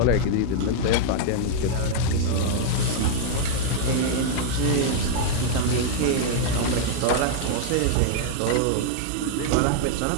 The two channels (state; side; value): different; both; correlation -0.01